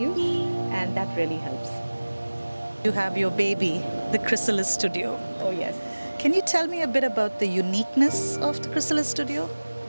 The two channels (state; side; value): inverted; both; correlation -1.00